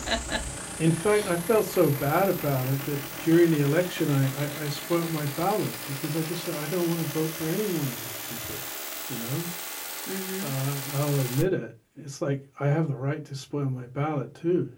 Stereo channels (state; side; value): identical; both; correlation 1.00